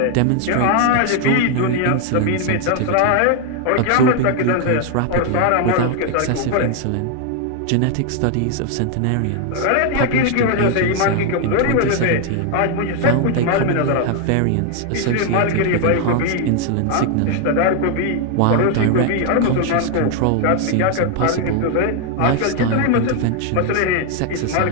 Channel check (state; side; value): different; both; correlation 0.01